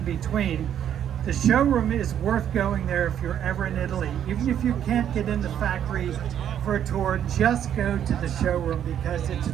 between. The showroom is worth going there if you're ever in Italy. Even if you can't get in the factory for a tour, just go to the showroom, because it's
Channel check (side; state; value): left; quieter; 9.7 dB